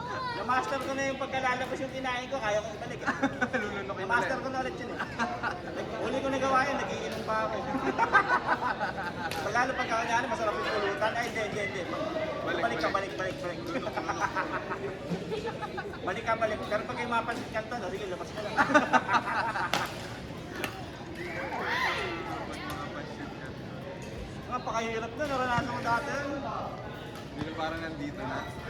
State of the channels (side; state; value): both; identical; correlation 1.00